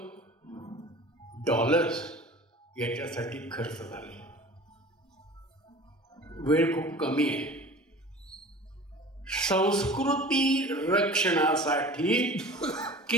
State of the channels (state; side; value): normal; both; correlation 0.41